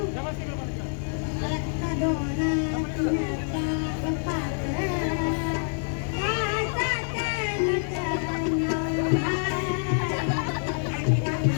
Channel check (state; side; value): silent; right; digital silence